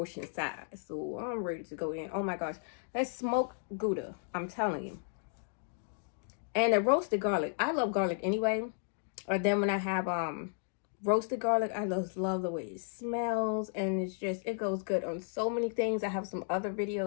size. So I'm ready to go in. Oh my gosh, that's smoked Gouda, I'm telling you. And the roasted garlic. I love garlic anyway. Or then when I have roasted garlic, I just love the way it smells, and it goes good on so many things. I have some other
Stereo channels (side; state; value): right; silent; digital silence